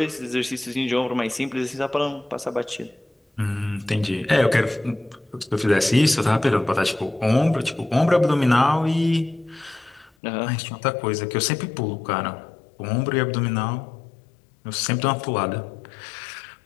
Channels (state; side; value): drops out; right; at 10.1 s